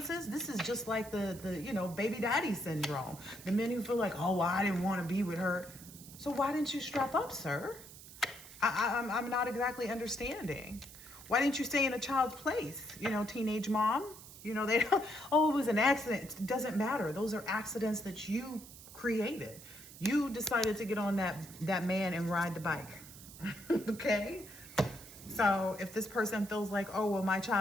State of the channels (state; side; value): noise; right; hiss, 17 dB below the sound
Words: This is just like the you know, baby daddy syndrome. The men who feel like, oh, well, I didn't want to be with her. So why didn't you strap up, sir? I'm not exactly understanding. Why didn't you stay in a child's place? You know, teenage mom, you know, they don't, oh, it was an accident. It doesn't matter. Those are accidents that you created. You decided to get on that man and ride the bike. Okay? So if this person feels like, oh, well, my